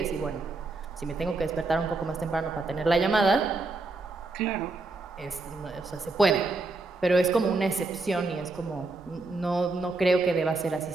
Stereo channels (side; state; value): left; quieter; 3.4 dB